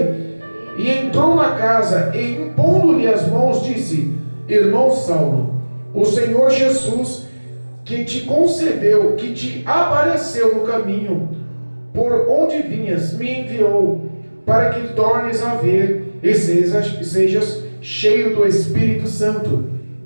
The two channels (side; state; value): both; inverted; correlation -1.00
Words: e entrou na casa, e impondo-lhe as mãos, disse: Irmão Saulo, o Senhor Jesus, que te concedeu, que te apareceu no caminho por onde vinhas, me enviou para que tornes a ver e sejas cheio do Espírito Santo.